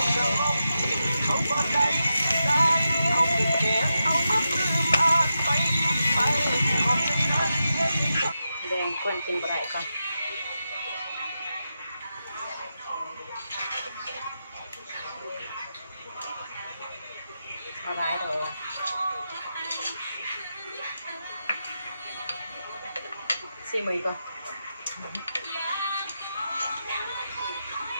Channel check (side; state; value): both; inverted; correlation -0.88